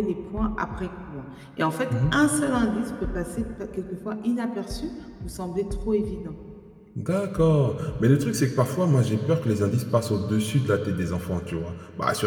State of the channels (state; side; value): identical; both; correlation 1.00